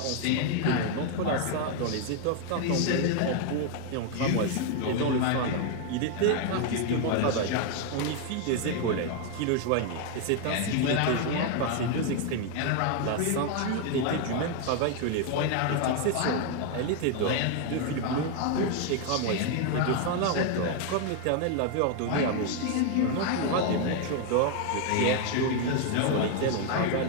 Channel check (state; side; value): different; both; correlation 0.01